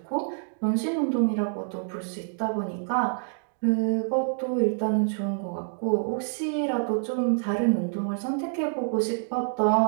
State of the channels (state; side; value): silent; left; digital silence